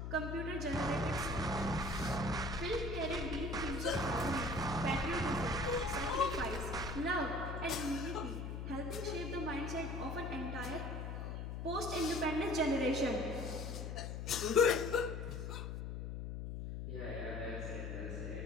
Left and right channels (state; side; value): noise; left; hum, 5 dB below the sound